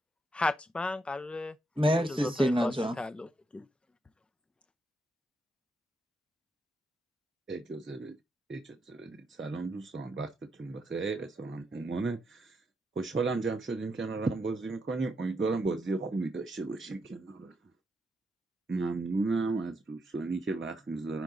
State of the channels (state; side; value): normal; both; correlation 0.81